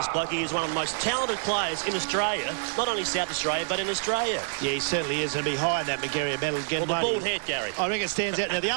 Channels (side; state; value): left; silent; digital silence